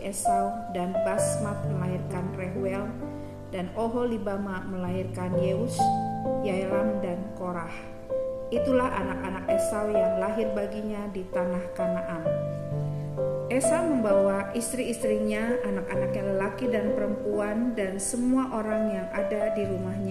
Esau dan Basmat melahirkan Rehuel dan Oholibama melahirkan Yeus, Yaelam dan Korah. Itulah anak-anak Esau yang lahir baginya di tanah Kanaan. Esau membawa istri-istrinya, anak-anaknya lelaki dan perempuan, dan semua orang yang ada di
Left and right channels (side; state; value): both; identical; correlation 1.00